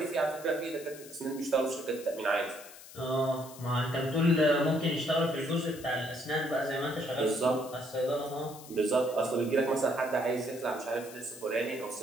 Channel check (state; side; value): noise; left; hiss, 17 dB below the sound